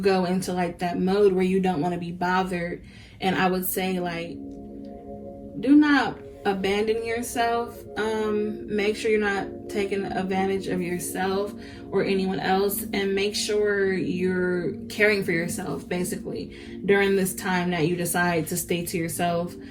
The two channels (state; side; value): identical; both; correlation 1.00